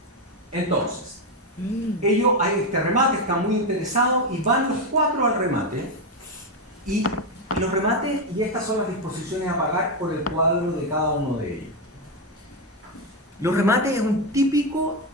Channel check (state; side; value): normal; both; correlation 0.08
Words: entonces, ellos hay este remate, están muy interesados y van los 4 al remate y los remates, y estas son las disposiciones a pagar por el cuadro de cada uno de ellos. Los remates es un típico